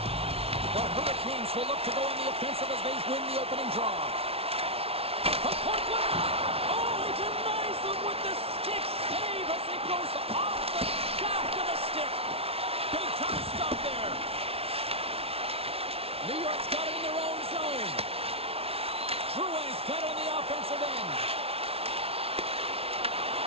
The Hurricanes will look to go on the offensive as they win the opening draw. From point blank! Oh, he denies them with the stick save as he goes off the shaft of the stick. Big time stop there. New York's got it in their own zone. Drouin's got it on the offensive end.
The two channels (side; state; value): left; late; 0.29 ms